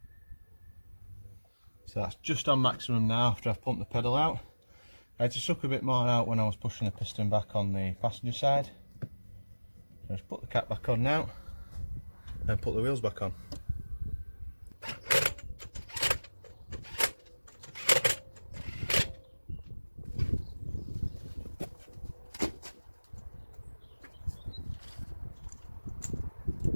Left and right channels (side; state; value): both; inverted; correlation -1.00